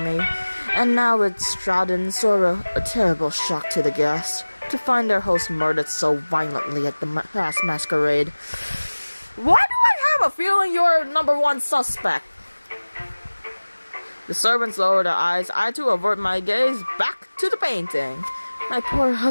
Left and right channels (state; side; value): inverted; both; correlation -1.00